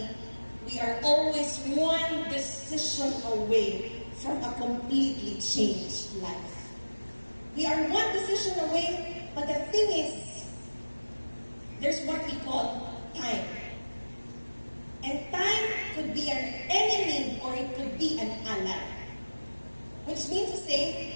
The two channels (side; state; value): both; inverted; correlation -1.00